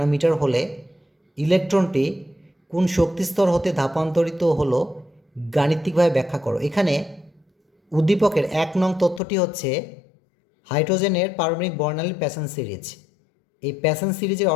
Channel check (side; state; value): right; drops out; at 9.2 s